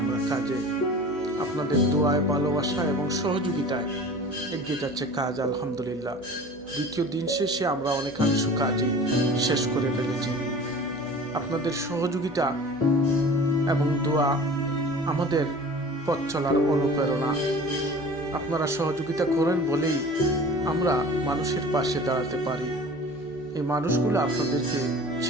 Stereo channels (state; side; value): noise; right; hum, 25 dB below the sound